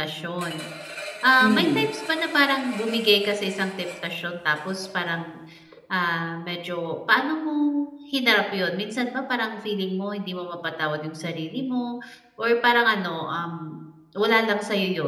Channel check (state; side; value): identical; both; correlation 1.00